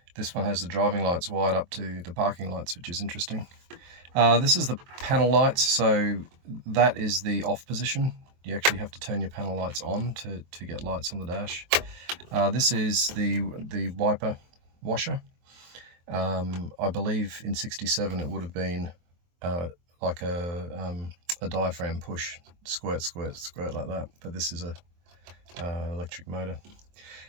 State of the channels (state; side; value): late; left; 23 ms